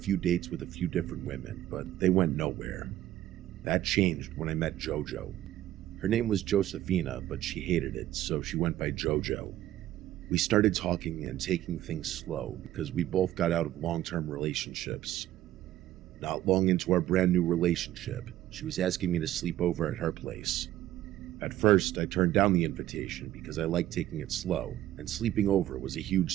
dates with a few different women, but they went nowhere. That changed when I met JoJo. Her name was Josephina, but she hated it, so she went by JoJo. We started talking and taking things slow because we both got out of long-term relationships. Not long into our brand new relationship, she was asking me to sleep over at her place. At first, I turned down the invitation because I liked taking it slow, and sleeping over was a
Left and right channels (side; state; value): left; quieter; 13.7 dB